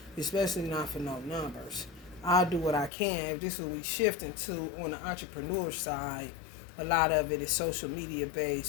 Especially not for no numbers. I'll do what I can. If this is what we shifting to on the entrepreneur side, a lot of it is social media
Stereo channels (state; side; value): drops out; right; at 2.9 s